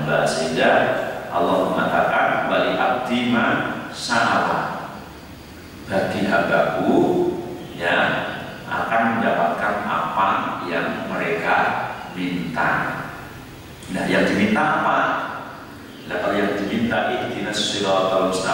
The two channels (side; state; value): both; identical; correlation 1.00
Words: sehingga Allah mengatakan wali abdi ma sa'ala, bagi hambaku ya akan mendapatkan apa yang mereka minta. Nah, yang diminta apa? Nah, kalau yang diminta ihdinas siratal